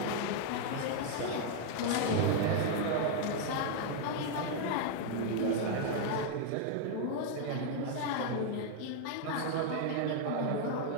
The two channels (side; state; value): both; different; correlation 0.00